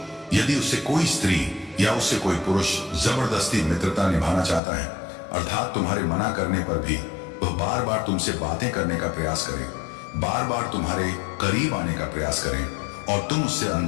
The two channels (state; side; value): drops out; right; at 4.6 s